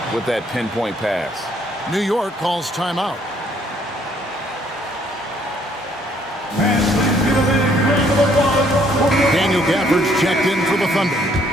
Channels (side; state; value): both; normal; correlation 0.65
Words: with that pinpoint pass. New York calls timeout. Daniel Gafford's checked in for the